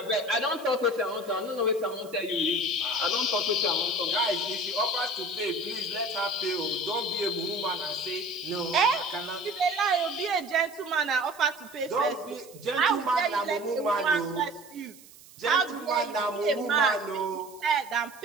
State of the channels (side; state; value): right; noise; hiss, 22 dB below the sound